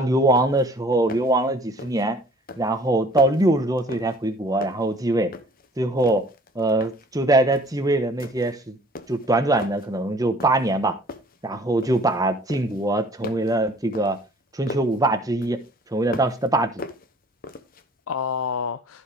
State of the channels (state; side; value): normal; both; correlation 0.52